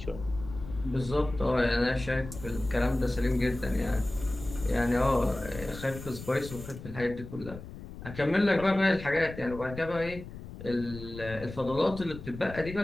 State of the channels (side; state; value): left; noise; rumble, 12 dB below the sound